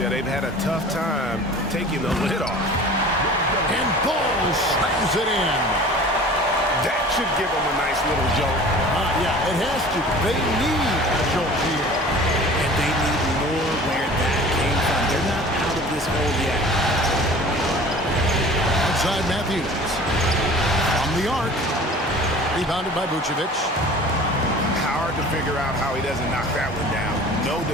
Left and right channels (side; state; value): both; normal; correlation 0.43